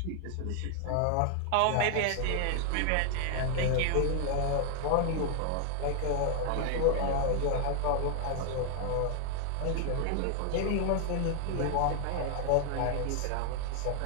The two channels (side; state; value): both; different; correlation 0.00